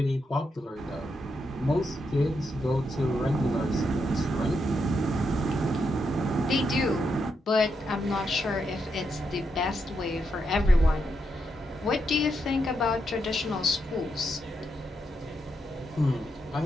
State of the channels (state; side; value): normal; both; correlation 0.82